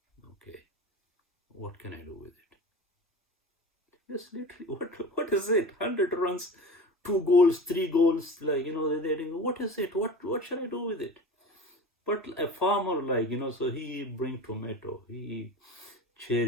Okay, what can I do with it? Just literally, what is it? 100 runs, 2 goals, 3 goals, like, what is it? What should I do with it? But a farmer, like, so he bring tomato, he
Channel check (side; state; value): both; normal; correlation 0.35